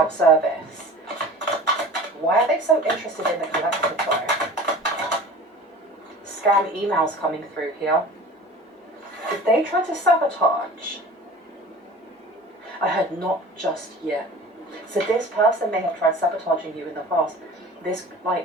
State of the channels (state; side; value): normal; both; correlation 0.40